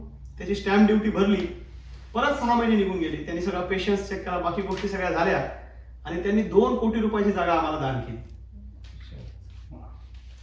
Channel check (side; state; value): both; identical; correlation 1.00